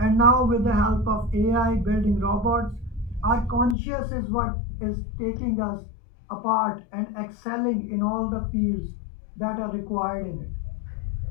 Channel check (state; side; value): drops out; right; at 3.8 s